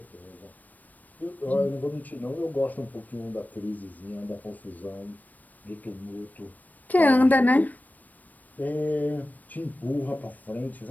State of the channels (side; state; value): right; late; 0.082 ms